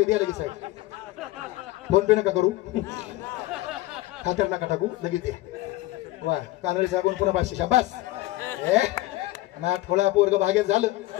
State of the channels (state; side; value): quieter; right; 17.6 dB